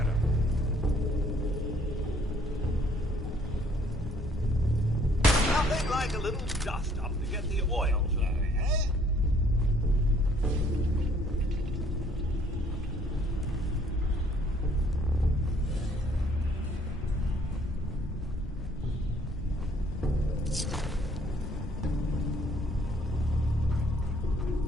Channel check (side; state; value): both; normal; correlation 0.62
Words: Nothing like a little dust up to get the oil flowing, eh?